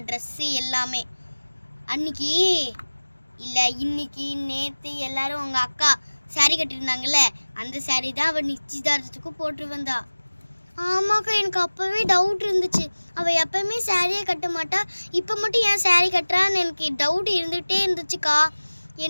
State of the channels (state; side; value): inverted; both; correlation -1.00